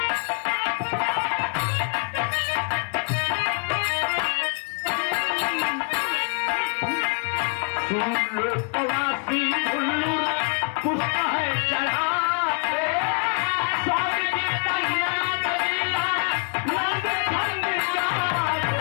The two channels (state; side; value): quieter; right; 37.6 dB